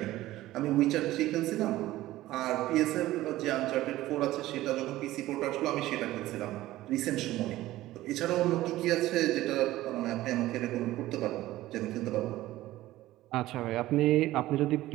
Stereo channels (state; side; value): quieter; left; 16.1 dB